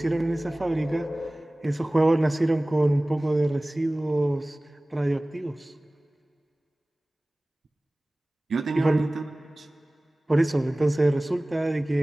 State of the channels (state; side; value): normal; both; correlation 0.98